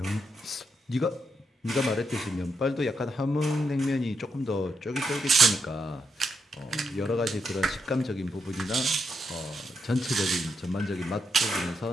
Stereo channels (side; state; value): both; normal; correlation 0.81